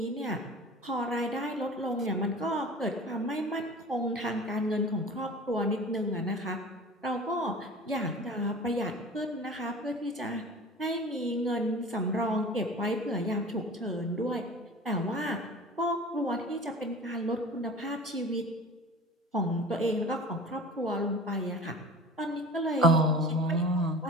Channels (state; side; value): normal; both; correlation 0.39